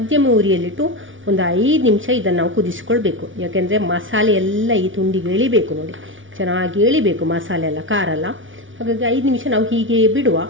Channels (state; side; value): late; left; 0.57 ms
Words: ಉರಿಯಲ್ಲಿಟ್ಟು ಒಂದು 5 ನಿಮಿಷ ಇದನ್ನು ನಾವು ಕುದಿಸ್ಕೊಳ್ಬೇಕು. ಯಾಕೆಂದರೆ ಮಸಾಲೆ ಎಲ್ಲ ಈ ತುಂಡಿಗೆ ಎಳಿಬೇಕು. ನೋಡಿ, ಚೆನ್ನಾಗಿ ಎಳಿಬೇಕು ಮಸಾಲೆ ಎಲ್ಲ, ಖಾರ ಎಲ್ಲ. ಹಾಗಾಗಿ 5 ನಿಮಿಷ ನಾವು ಹೀಗೆ ಬಿಡುವ.